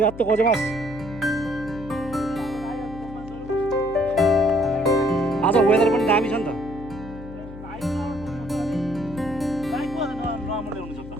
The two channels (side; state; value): left; noise; hum, 14 dB below the sound